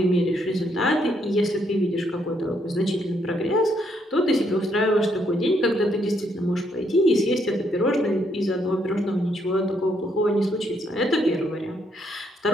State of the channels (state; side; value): normal; both; correlation 0.73